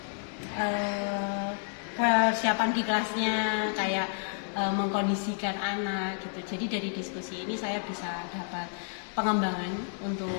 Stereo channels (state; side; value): silent; right; 58 dB below the other